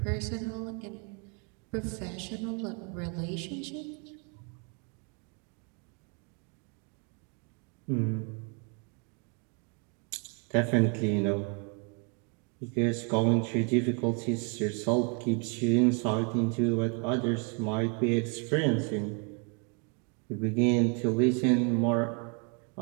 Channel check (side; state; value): left; quieter; 36.6 dB